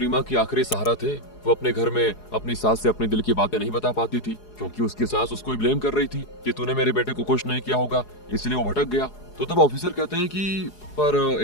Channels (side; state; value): right; late; 4.8 ms